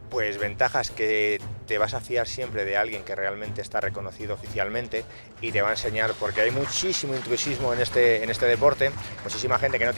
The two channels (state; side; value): inverted; both; correlation -1.00